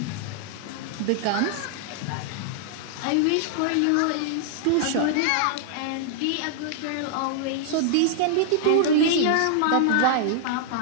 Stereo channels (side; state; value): both; different; correlation -0.01